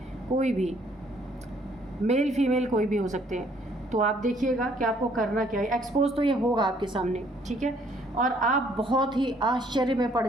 कोई भी मेल फीमेल कोई भी हो सकते हैं। तो आप देखिएगा कि आपको करना क्या है। एक्सपोज तो ये होगा आपके सामने, ठीक है, और आप बहुत ही आश्चर्य में पड़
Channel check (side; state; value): both; normal; correlation 0.63